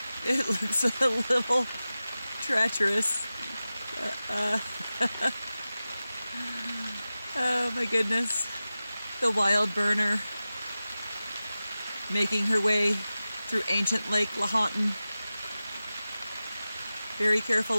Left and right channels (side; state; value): both; inverted; correlation -0.95